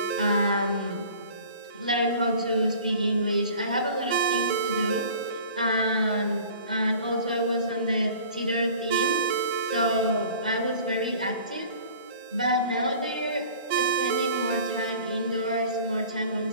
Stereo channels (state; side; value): inverted; both; correlation -0.46